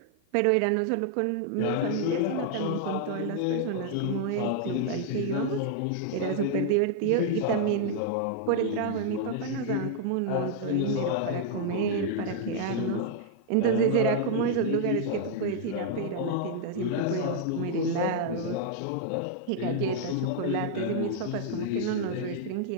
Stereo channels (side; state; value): both; different; correlation -0.01